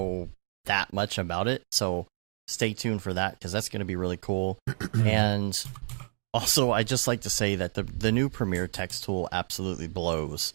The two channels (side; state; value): left; silent; digital silence